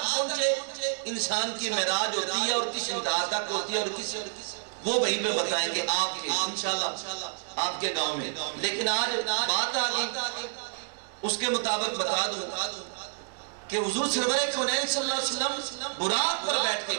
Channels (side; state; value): left; silent; digital silence